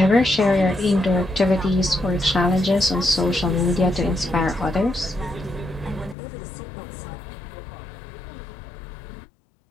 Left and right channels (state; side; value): drops out; right; at 6.2 s